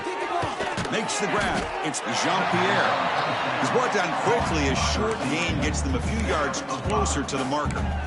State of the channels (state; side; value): identical; both; correlation 1.00